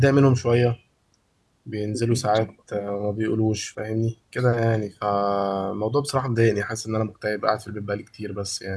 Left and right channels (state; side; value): identical; both; correlation 1.00